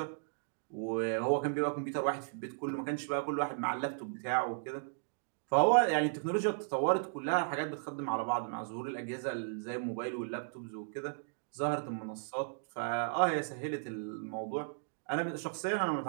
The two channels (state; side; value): silent; left; digital silence